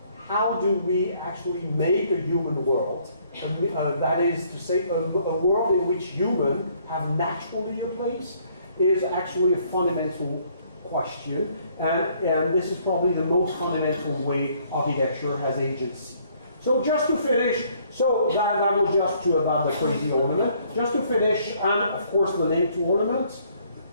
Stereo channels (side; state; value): both; inverted; correlation -0.64